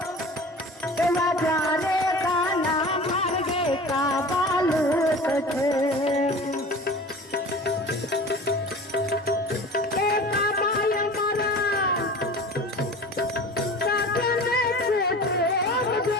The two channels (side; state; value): both; normal; correlation 0.38